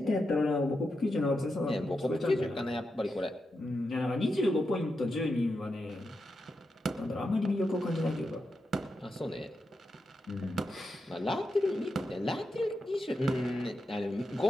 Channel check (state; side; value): normal; both; correlation 0.87